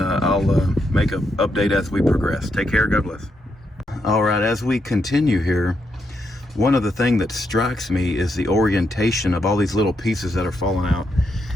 make an update as we progress. Take care. God bless. All right, as we continue here, one of the things that strikes me is the orientation of all these little pieces that are falling out.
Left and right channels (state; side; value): normal; both; correlation 0.80